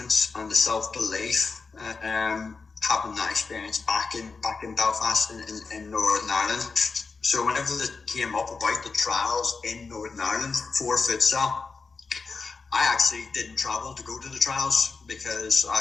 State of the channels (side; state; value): right; quieter; 4.5 dB